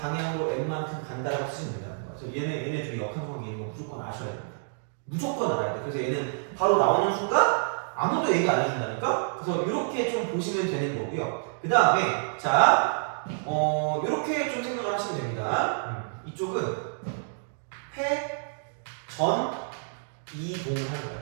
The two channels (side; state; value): left; silent; digital silence